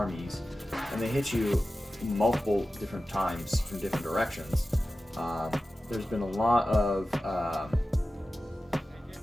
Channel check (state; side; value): normal; both; correlation 0.94